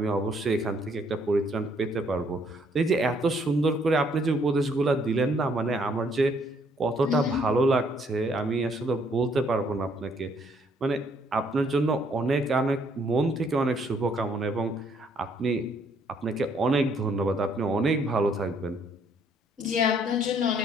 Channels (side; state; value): both; normal; correlation 0.67